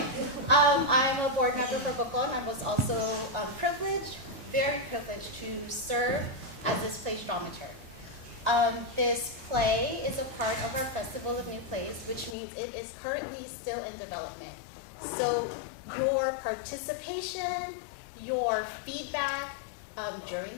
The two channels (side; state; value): right; drops out; at 12.4 s